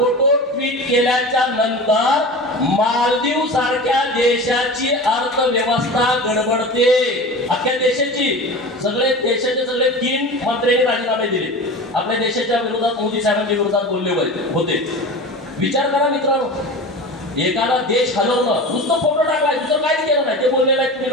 ट्विट केल्याच्या नंतर मालदीव सारख्या देशाची अर्थव्यवस्था गडबडते. अख्ख्या देशाची देशाचे सगळे 3 मंत्र्यांनी राजीनामे दिले. आपल्या देशाच्या विरोधात मोदी साहेबांच्या विरोधात बोलले होते. विचार करा मित्रांनो, एखादा देश हलवणं, नुसतं फोटो टाकलाय, दुसरं काहीच केलं नाही. ते बोलले नाही तुम्ही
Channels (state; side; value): normal; both; correlation 0.31